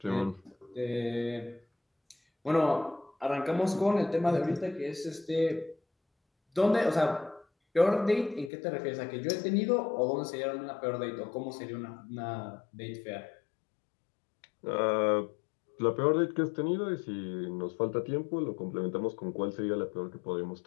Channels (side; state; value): right; drops out; at 8.5 s